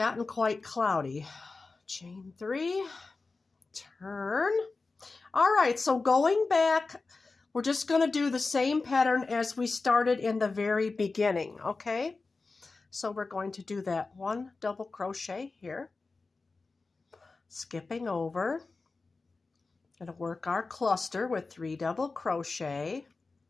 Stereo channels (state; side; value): quieter; right; 3.9 dB